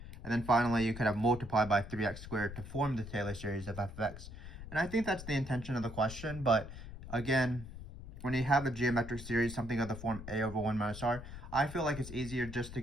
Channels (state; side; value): noise; left; rumble, 12 dB below the sound